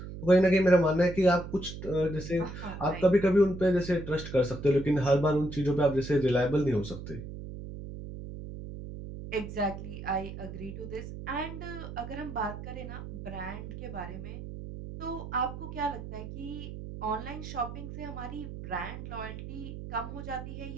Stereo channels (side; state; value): right; noise; hum, 10 dB below the sound